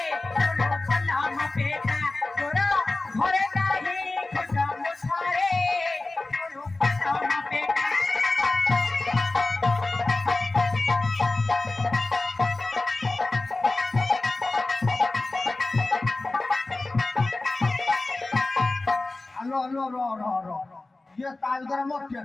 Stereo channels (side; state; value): right; quieter; 3.1 dB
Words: চলো পলা মপেটা তোরা ঘরে নাহি খুদা মুছারে চলো পলা মপেটা আলো আলো র র র ইয়ে তার দ্বারা মোর